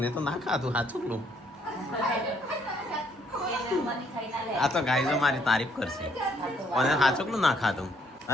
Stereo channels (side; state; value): both; normal; correlation 0.68